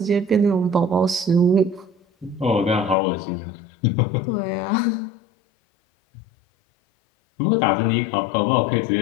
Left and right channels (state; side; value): drops out; right; at 3.0 s